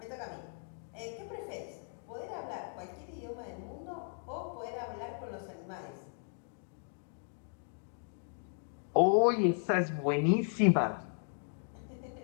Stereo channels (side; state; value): right; silent; 54 dB below the other